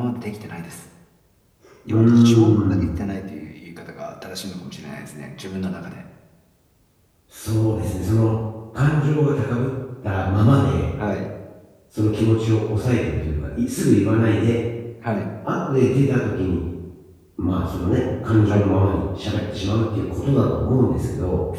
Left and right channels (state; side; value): identical; both; correlation 1.00